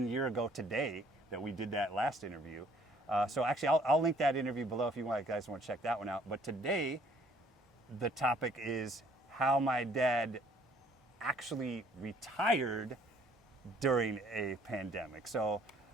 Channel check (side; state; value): both; normal; correlation 0.60